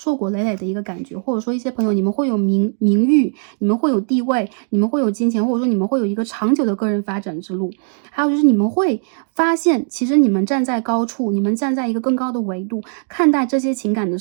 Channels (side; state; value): left; silent; 60 dB below the other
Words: 果累累的一个感觉。或者说一些朋友你们会有名誉，你们会有地位，你们会有金钱，或者说你们会有一个长久的个人发展之路。还有就是你们会发现，其实你们站在高处，你们站在一个更高的维度看待这些情感的